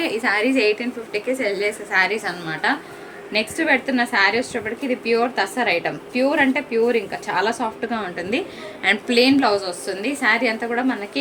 ఈ శారీస్ 1850కి సెల్ చేసే శారీస్ అనమాట. నెక్స్ట్ పెడుతున్న శారీ వచ్చేటప్పటికి ఇది ప్యూర్ తస్సర్ ఐటమ్. ప్యూర్ అంటే ప్యూర్, ఇంకా చాలా సాఫ్ట్గా ఉంటుంది. అండ్ ప్లెయిన్ బ్లౌజ్ వస్తుంది. శారీ అంతా కూడా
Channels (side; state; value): both; identical; correlation 1.00